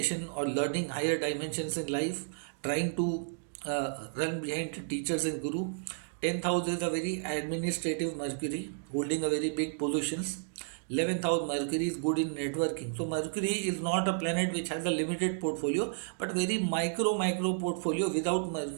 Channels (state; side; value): silent; left; digital silence